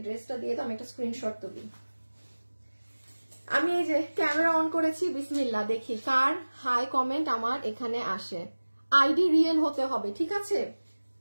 ড্রেসটা দিয়ে দাও, আমি একটা স্ক্রিনশট তুলি। আমি এই যে ক্যামেরা অন করেছি, বিসমিল্লাহ, দেখি কার হাই কমেন্ট আমার এখানে আসে। আইডি রিয়েল হতে হবে, ঠিক আছে?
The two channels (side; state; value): both; inverted; correlation -1.00